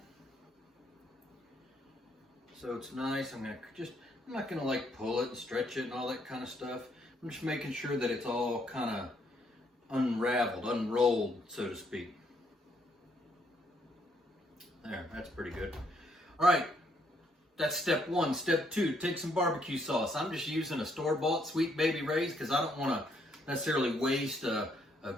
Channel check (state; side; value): normal; both; correlation 0.71